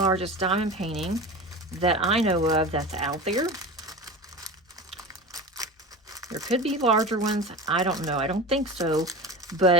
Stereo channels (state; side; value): normal; both; correlation 0.30